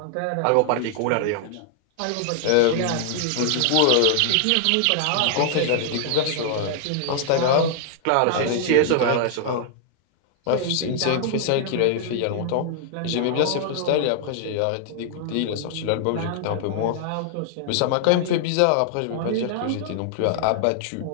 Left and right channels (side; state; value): both; different; correlation -0.01